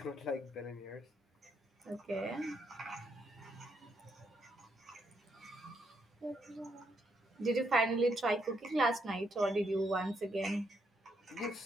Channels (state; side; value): normal; both; correlation 0.77